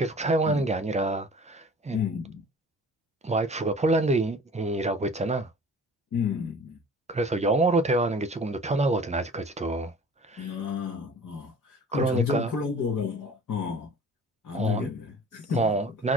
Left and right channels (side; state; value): both; normal; correlation 0.45